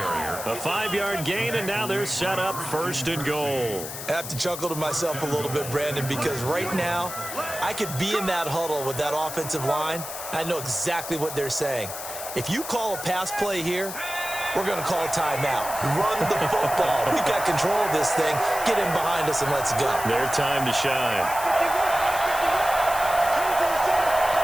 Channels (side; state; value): left; noise; hiss, 9 dB below the sound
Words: A 5-yard gain, and now they're set up 1st and goal. I have to chuckle to myself a little bit, Brandon, because right now I could be in that huddle with that offensive line. I know exactly what they're saying. If you call a pass play here, we're going to call a timeout. Run the football. We've got control of this thing. Get in behind us and let's go. Their time to shine.